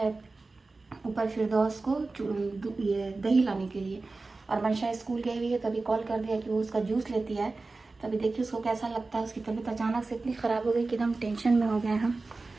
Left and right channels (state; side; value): quieter; left; 3.6 dB